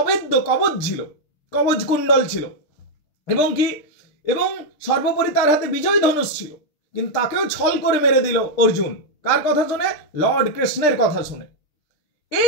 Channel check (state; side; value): late; right; 6.7 ms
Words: কবচ ছিল, কবচ কুণ্ডল ছিল, এবং সর্বোপরি তার হাতে বিজয় ধনুষ ছিল। কিন্তু তাকেও ছল করে মেরে দিল অর্জুন। কার কথা শুনে? লর্ড কৃষ্ণের কথা শুনে।